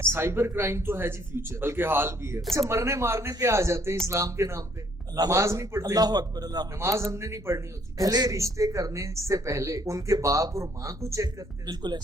साइबर क्राइम तो है जी फ्यूचर, बल्कि हाल भी है। अच्छा, मरने मारने पे आ जाते हैं इस्लाम के नाम पे। नमाज नहीं पढ़ते, अल्लाह अकबर, अल्लाह अकबर। नमाज हमने नहीं पढ़नी होती। पहले रिश्ते करने से पहले उनके बाप और माँ को चेक करते हैं। बिल्कुल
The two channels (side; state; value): both; normal; correlation 0.65